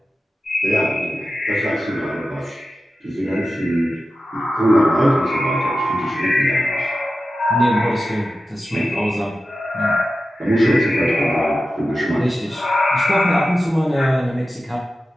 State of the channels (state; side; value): normal; both; correlation 0.93